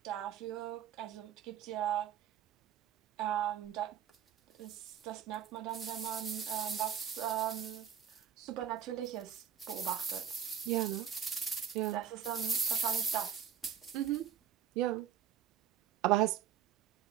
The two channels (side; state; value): left; quieter; 9.2 dB